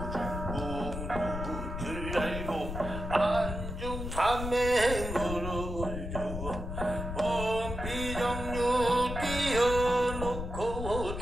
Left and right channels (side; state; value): left; noise; rumble, 5 dB below the sound